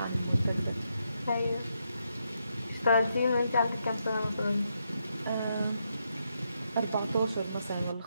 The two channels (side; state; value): both; inverted; correlation -0.80